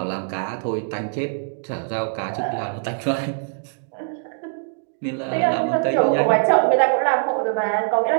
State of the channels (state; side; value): silent; left; digital silence